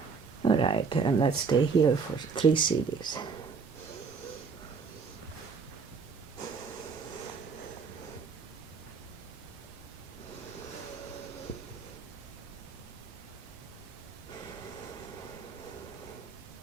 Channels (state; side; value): quieter; left; 5.2 dB